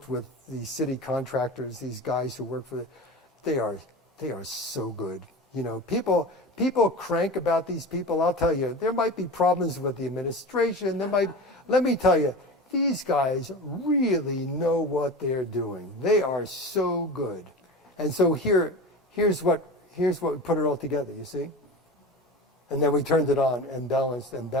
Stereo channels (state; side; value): normal; both; correlation 0.31